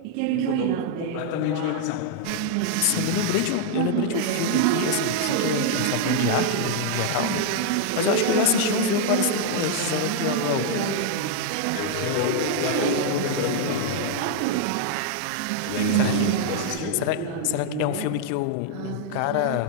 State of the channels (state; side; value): different; both; correlation -0.01